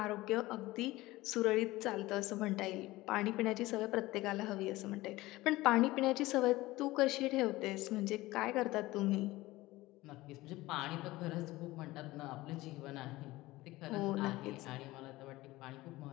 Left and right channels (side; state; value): right; quieter; 18.8 dB